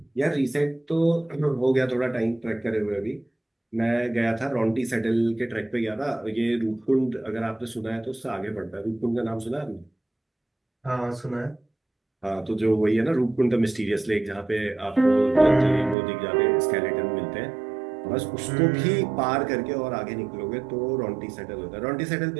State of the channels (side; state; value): left; drops out; at 16.0 s